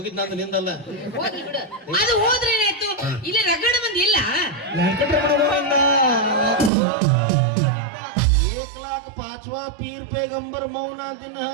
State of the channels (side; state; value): left; drops out; at 6.7 s